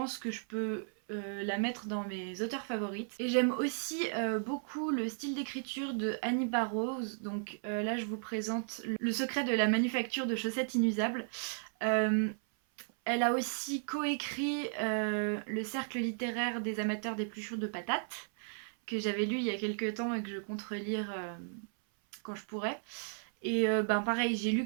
que je peux la mettre dans mes auteurs favorites. Et j'aime aussi beaucoup le style d'écriture de Annie Barrows. Donc là je vous présente Le secret de la manufacture de chaussettes inusables. Elle a aussi coécrit Le cercle littéraire des amateurs d'épluchures de patates, que j'avais lu il y a quelques temps et que je compte relire quand je pourrai. Et pareil, j'ai lu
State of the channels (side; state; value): left; silent; 55 dB below the other